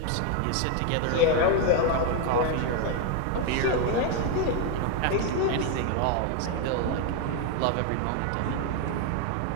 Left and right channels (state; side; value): different; both; correlation 0.01